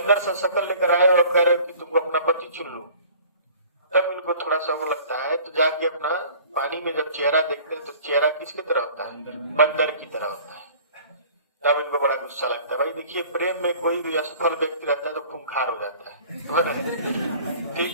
सा शक्ल लेकर आए और कह रहे कि तुमको अपना पति चुन लो। तब इनको थोड़ा सा वो लगता है, तो जाके अपना पानी में जब चेहरा देखते हैं तो चेहरा किसकी तरह होता है? बंदर की तरह होता है। तब इनको बड़ा गुस्सा लगता है। भाई देखिए, प्रेम में कोई भी असफल व्यक्ति रहता है तो खूंखार हो जाता है।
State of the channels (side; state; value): both; inverted; correlation -0.48